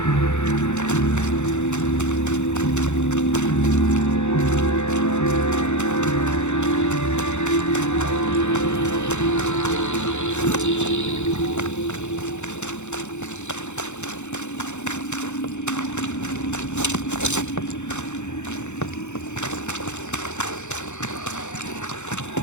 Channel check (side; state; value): right; late; 0.83 ms